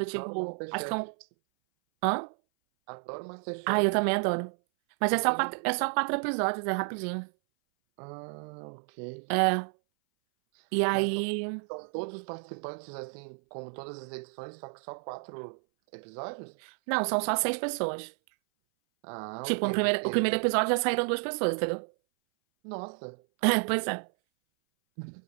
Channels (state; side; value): silent; left; 57 dB below the other